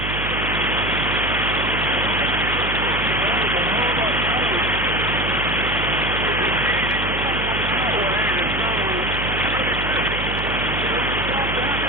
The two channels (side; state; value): right; noise; hum, 6 dB below the sound